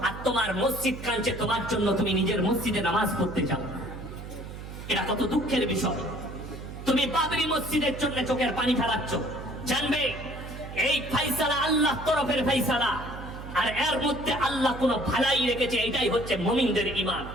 আর তোমার মসজিদ কাঁদছে তোমার জন্য, তুমি নিজের মসজিদে নামাজ পড়তে যাও। এটা কত দুঃখের বিষয়। তুমি বাবরি মসজিদের জন্য চোখের পানি ফেলাচ্ছ। জানবে এই ফাইসালা আল্লাহ তরফের ফাইসালা, আর এর মধ্যে আল্লাহ কোন ভালাই রেখেছে, এটাই হচ্ছে মুমিনদের ঈমান।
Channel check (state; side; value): noise; right; hum, 11 dB below the sound